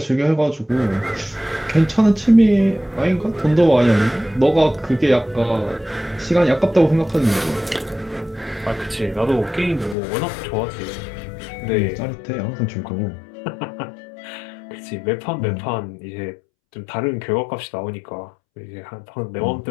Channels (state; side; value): drops out; right; at 10.0 s